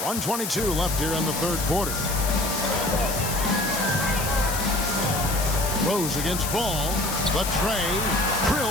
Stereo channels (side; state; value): left; noise; hiss, 5 dB below the sound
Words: left here in the third quarter. Rose against Ball. The tray.